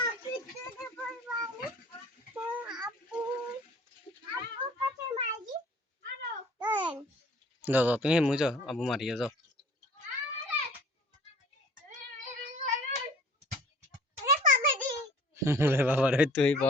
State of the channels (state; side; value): normal; both; correlation 0.51